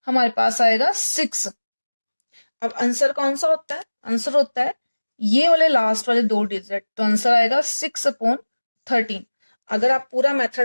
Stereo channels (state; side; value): inverted; both; correlation -1.00